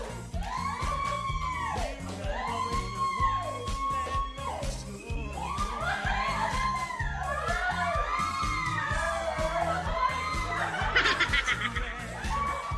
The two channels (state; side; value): identical; both; correlation 1.00